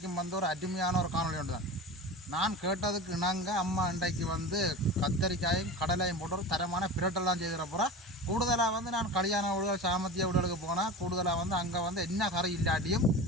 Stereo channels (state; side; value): normal; both; correlation 0.31